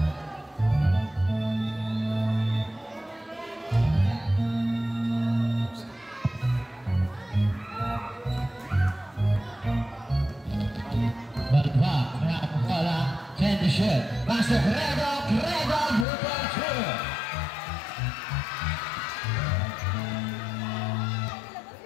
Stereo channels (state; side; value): drops out; right; at 16.1 s